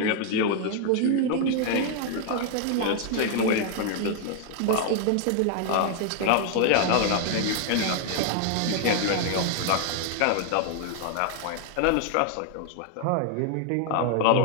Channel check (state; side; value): different; both; correlation 0.00